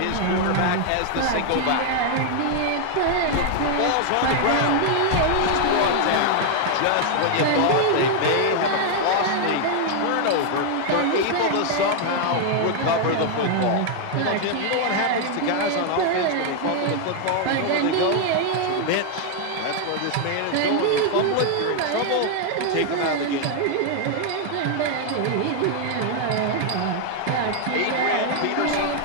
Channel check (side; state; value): both; different; correlation 0.00